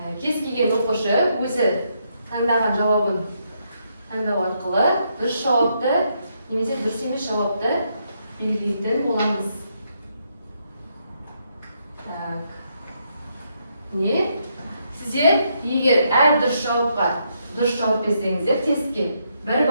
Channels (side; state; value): both; inverted; correlation -0.77